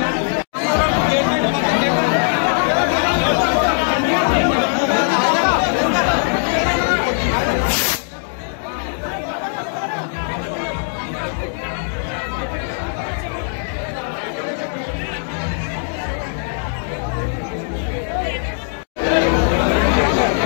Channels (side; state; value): right; silent; 65 dB below the other